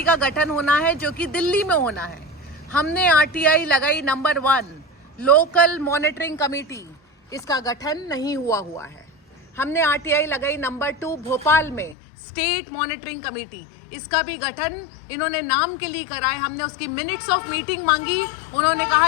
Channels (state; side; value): drops out; right; at 12.0 s